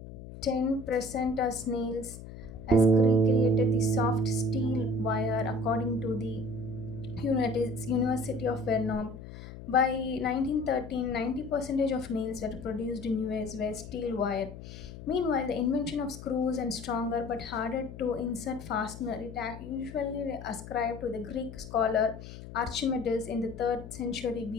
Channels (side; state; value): left; noise; hum, 13 dB below the sound